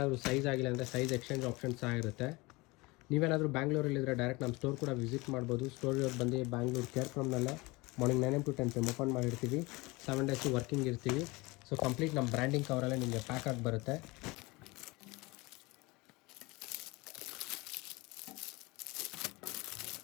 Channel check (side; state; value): right; quieter; 23.9 dB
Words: ಸೈಜ್ ಆಗಿಲ್ಲ ಅಂದರೆ ಸೈಜ್ ಎಕ್ಸ್ಚೇಂಜ್ ಆಪ್ಷನ್ಸ್ ಸಹ ಇರುತ್ತೆ. ನೀವೇನಾದರೂ ಬ್ಯಾಂಗ್ಳೂರಲ್ಲಿದ್ದರೆ ಡೈರೆಕ್ಟ್ ನಮ್ಮ ಸ್ಟೋರ್ ಕೂಡ ವಿಸಿಟ್ ಮಾಡ್ಬೋದು. ಸ್ಟೋರ್ ಬಂದು ಬ್ಯಾಂಗ್ಳೂರು ಕೇರ್ಫ್ರಮ್ನಲ್ಲೇ morning 9 AM to 10 PM open ಮಾಡಿರ್ತೀವಿ. 7 days ವರ್ಕಿಂಗ್ ಇರ್ತೀವಿ. ಸೊ ಕಂಪ್ಲೀಟ್ ನಮ್ಮ ಬ್ರ್ಯಾಂಡಿಂಗ್ ಕವರಲ್ಲೇ ನಿಮಗೆ ಪ್ಯಾಕ್ ಆಗಿ ಬರುತ್ತೆ.